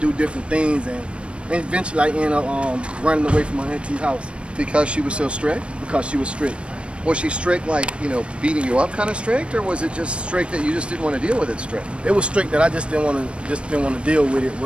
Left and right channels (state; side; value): late; left; 0.059 ms